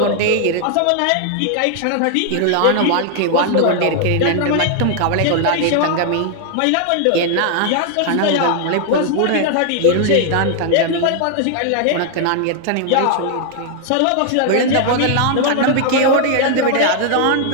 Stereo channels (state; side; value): different; both; correlation 0.00